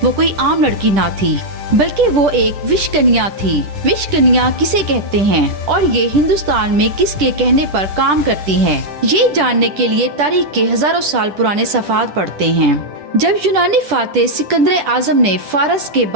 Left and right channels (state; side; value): late; left; 10 ms